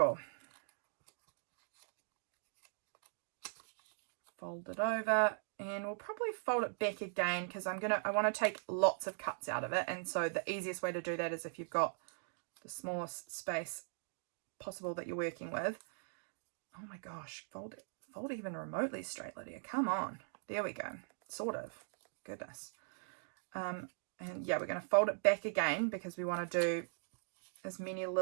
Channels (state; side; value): silent; left; digital silence